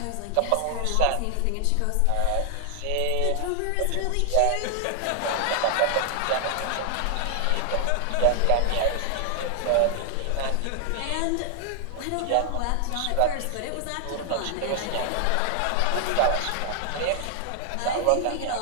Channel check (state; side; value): different; both; correlation 0.00